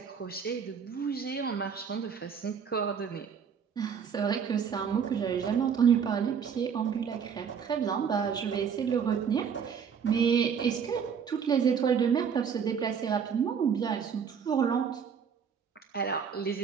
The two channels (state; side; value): quieter; left; 7.0 dB